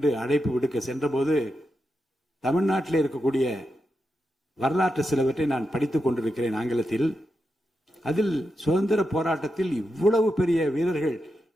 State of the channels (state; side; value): normal; both; correlation 0.87